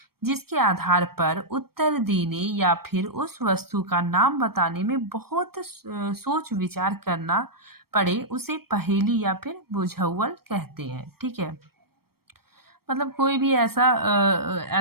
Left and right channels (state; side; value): late; left; 0.94 ms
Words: जिसके आधार पर उत्तर देने या फिर उस वस्तु का नाम बताने में बहुत सोच विचार करना पड़े, उसे पहेली या फिर बुझाउल कहते हैं, ठीक है। मतलब कोई भी